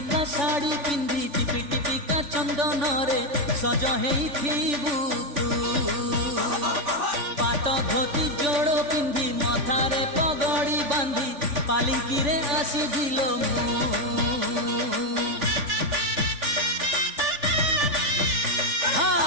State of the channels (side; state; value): left; late; 3.4 ms